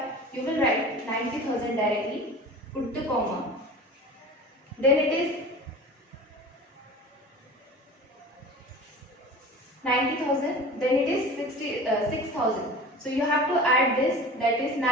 you will write 90,000 directly, put the comma. Then it is 90,000, then it is 6,000. So you have to add this, that is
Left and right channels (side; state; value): both; normal; correlation 0.37